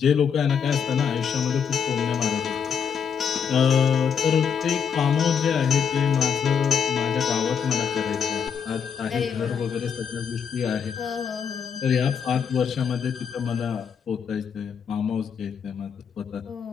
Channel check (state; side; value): quieter; right; 7.1 dB